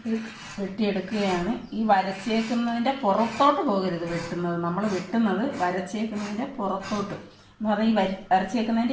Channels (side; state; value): both; identical; correlation 1.00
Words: ഇത് വെട്ടിയെടുക്കുകയാണ്. ഈ വരച്ചേക്കുന്നതിൻ്റെ പുറത്തോട്ട് പോകരുത് വെട്ടുന്നത്. നമ്മൾ വെട്ടുന്നത് വരച്ചേക്കുന്നതിൻ്റെ പുറത്തോട്ട് എന്ന് പറഞ്ഞാൽ ഈ